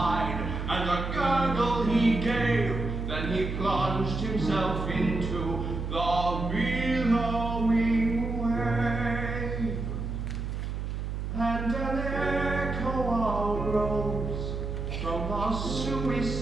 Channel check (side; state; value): right; noise; hum, 4 dB below the sound